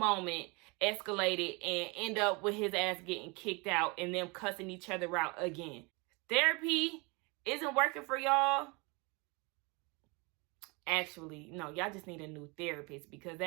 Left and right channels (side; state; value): left; quieter; 28.5 dB